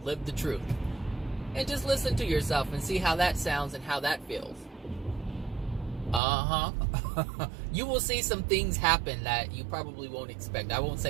live the truth. And just listen to yourself and see how that sounds and how that feels. You will see some things happen that you probably won't expect. I won't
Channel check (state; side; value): drops out; left; at 6.2 s